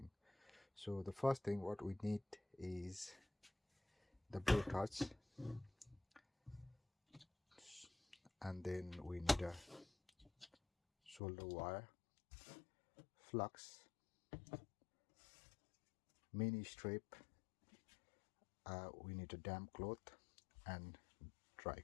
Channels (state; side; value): drops out; right; at 11.2 s